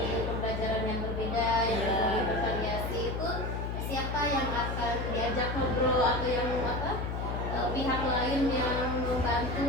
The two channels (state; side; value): noise; left; hum, 3 dB below the sound